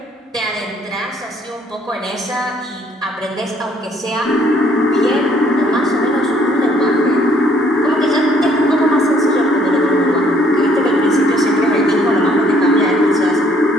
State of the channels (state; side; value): normal; both; correlation 0.64